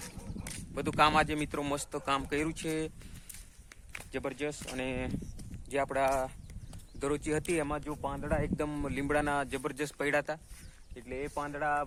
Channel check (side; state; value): both; identical; correlation 1.00